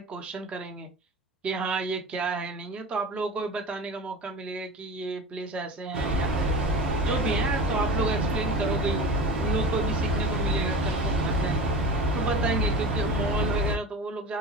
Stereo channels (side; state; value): both; normal; correlation 0.32